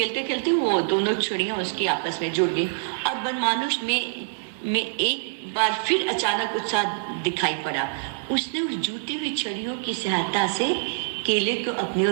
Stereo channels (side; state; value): left; quieter; 39.4 dB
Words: खेलते वो दोनों छड़ियां उसकी आपस में जुड़ गई और बनमानुष में एक बार फिर अचानक उत्साह दिखाई पड़ा। उसने उस जुटी हुई छड़ियों की सहायता से केले को अपनी